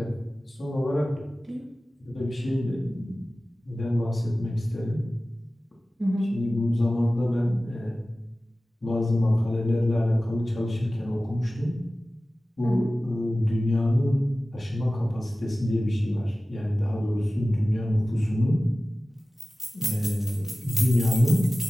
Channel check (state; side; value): normal; both; correlation 0.96